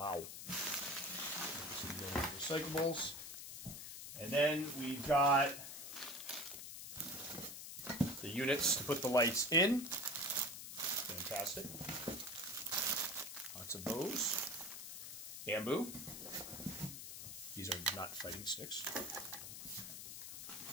Recyclables. And then we've got the units to put the lights in. Fantastic. Lots of those. Bamboo. These are not fighting sticks.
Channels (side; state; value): left; noise; hiss, 9 dB below the sound